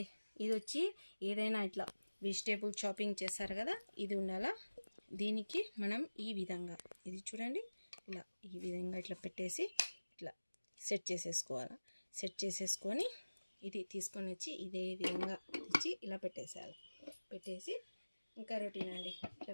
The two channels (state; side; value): inverted; both; correlation -1.00